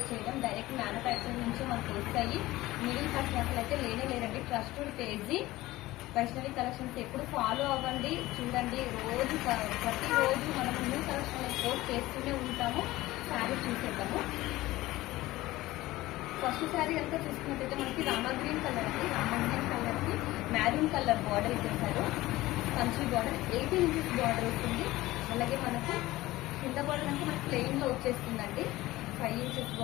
చేయడం, డైరెక్ట్ మ్యానుఫ్యాక్చరింగ్ నుంచి మనకు వస్తాయి. మిడిల్ పర్సన్ అసలు అయితే లేనే లేదండి. Trusted page Vaishnavi collections. ఎప్పుడు ఫాలో అవ్వండి, చూడండి. ప్రతిరోజు మనం న్యూ కలెక్షన్ పోస్ట్ చేస్తూనే ఉంటాము. శారీ చూసేద్దాము. ఫస్ట్ శారీ అంతా చూసుకున్నట్టయితే మనకి రామా గ్రీన్ కలర్ అండి. రామా గ్రీన్ కలర్ కి మ్యారూన్ కలర్ బార్డర్ ఇచ్చేసారు. కంచి బార్డర్ 18 ఇంచెస్ బార్డర్ వస్తుంది. అలాగే మనకు కింద బార్డర్ అంటే మనకి ప్లెయిన్ లో వచ్చేస్తుందండి. 5 ఇంచెస్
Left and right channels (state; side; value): quieter; right; 17.7 dB